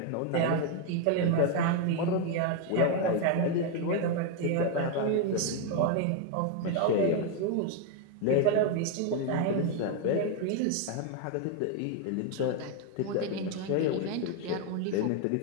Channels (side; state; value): both; different; correlation 0.01